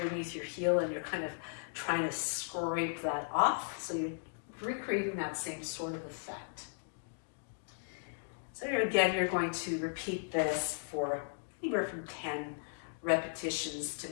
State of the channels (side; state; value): right; silent; digital silence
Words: your heel, and you're kind of trying to scrape that off. So you're recreating that same sort of effect. So again, you're going to repeat this for anywhere from 10 repetitions to